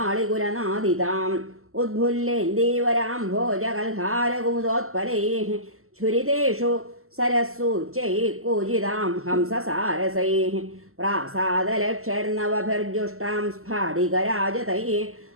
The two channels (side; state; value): left; late; 0.62 ms